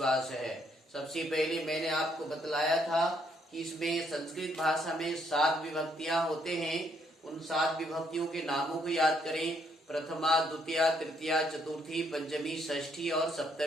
है। सबसे पहले मैंने आपको बतलाया था कि इसमें संस्कृत भाषा में 7 विभक्तियां होते हैं। उन 7 विभक्तियों के नामों को याद करें। प्रथमा, द्वितीया, तृतीया, चतुर्थी, पंचमी, षष्ठी और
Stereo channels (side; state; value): both; normal; correlation 0.71